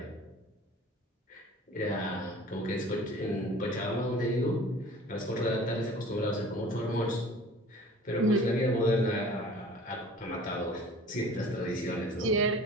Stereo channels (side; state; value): both; normal; correlation 0.45